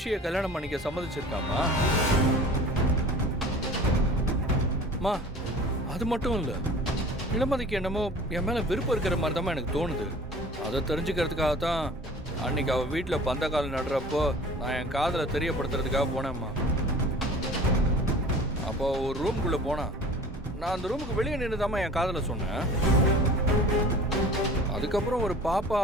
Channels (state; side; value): normal; both; correlation 0.44